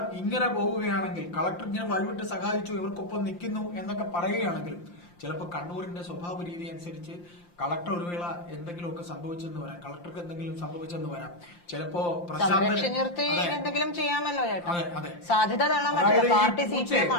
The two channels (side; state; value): right; late; 5.8 ms